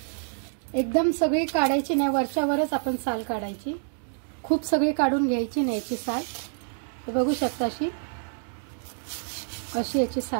एकदम सगळी काढायची नाही, वरच्यावरच आपण साल काढायची। खूप सगळी काढून घ्यायची नाही याची साल। हे बघू शकता, अशी याची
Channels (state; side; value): silent; left; 60 dB below the other